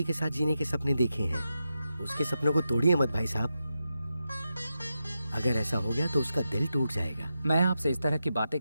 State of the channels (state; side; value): inverted; both; correlation -0.89